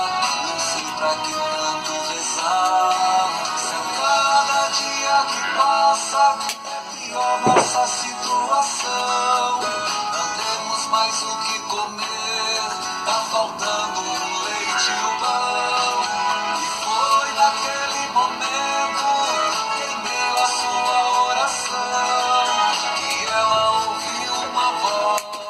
não sei pra que tanto rezar. Se a cada dia que passa é pior nossa situação, não temos mais o que comer, tá faltando o leite e o pão. E foi naquele momento, em meio à sua oração, que ela ouviu uma voz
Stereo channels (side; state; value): both; identical; correlation 1.00